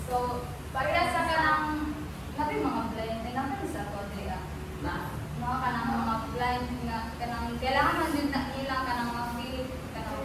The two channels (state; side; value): identical; both; correlation 1.00